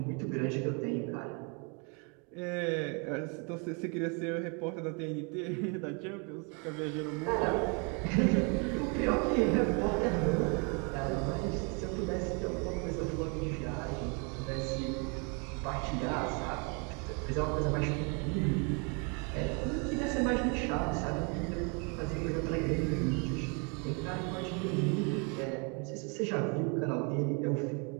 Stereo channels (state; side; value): quieter; left; 34.4 dB